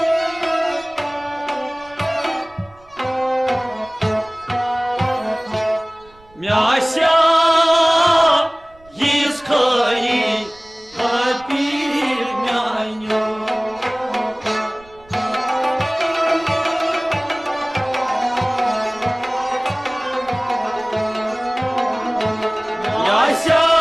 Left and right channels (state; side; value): noise; right; rumble, 27 dB below the sound